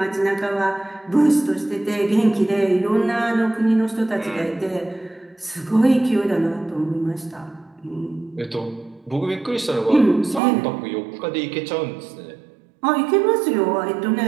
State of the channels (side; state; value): left; drops out; at 10.4 s